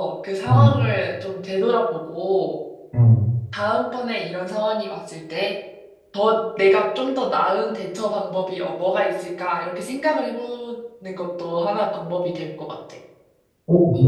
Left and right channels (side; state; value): both; identical; correlation 1.00